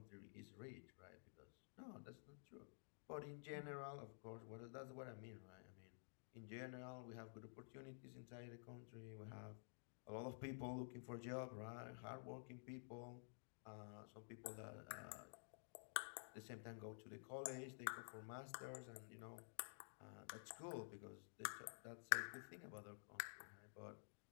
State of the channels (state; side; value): silent; right; digital silence